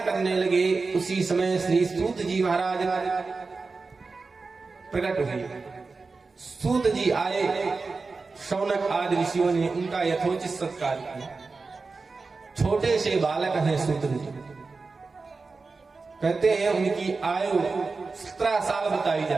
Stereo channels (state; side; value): quieter; left; 4.1 dB